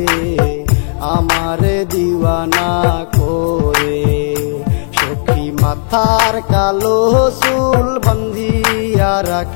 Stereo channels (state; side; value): silent; right; 65 dB below the other